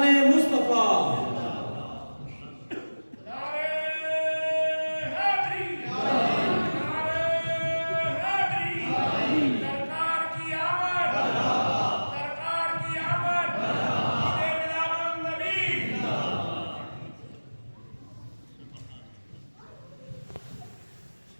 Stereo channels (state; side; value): inverted; both; correlation -1.00